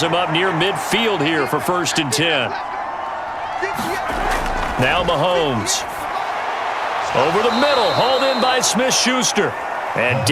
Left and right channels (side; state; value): both; identical; correlation 1.00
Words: him up near midfield here for 1st and 10. Now Mahomes. Over the middle, hauled in by Smith-Schuster. And